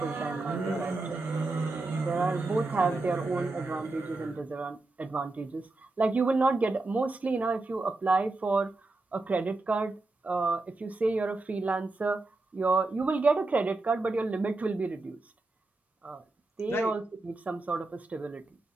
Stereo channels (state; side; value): quieter; left; 3.2 dB